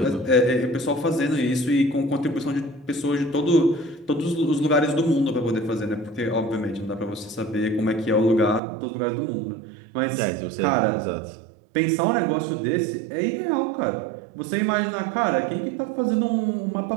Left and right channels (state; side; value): drops out; left; at 8.6 s